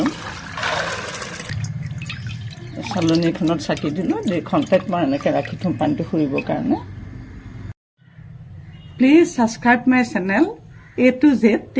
চালনীখনত চাকি দিলোঁ, 2 ঘণ্টাত মই এনেকৈ ৰাখি থ'ম পানীটো সৰিবৰ কাৰণে। Please subscribe my channel A-to-Z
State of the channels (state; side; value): identical; both; correlation 1.00